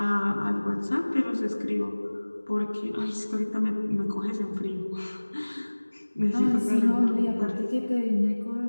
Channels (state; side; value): inverted; both; correlation -1.00